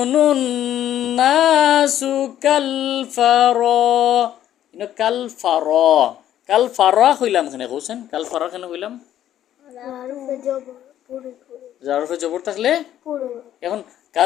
الناس كالفراش কালফারা হইলাম কেন কৌছেন? কালফারা কেন হইলাম? জারফে জবর থাকলে এখন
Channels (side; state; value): right; quieter; 11.6 dB